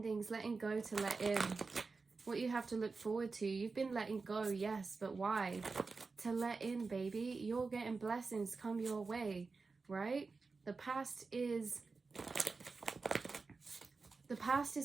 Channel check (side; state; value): left; quieter; 4.3 dB